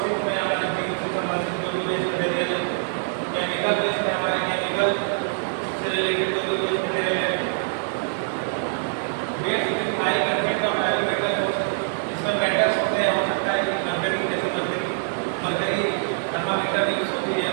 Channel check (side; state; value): left; silent; digital silence